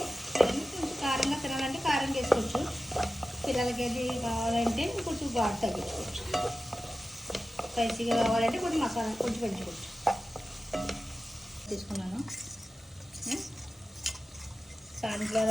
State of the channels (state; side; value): normal; both; correlation 0.94